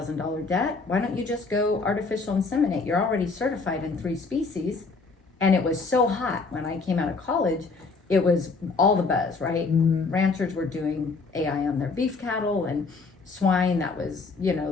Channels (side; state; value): right; quieter; 4.2 dB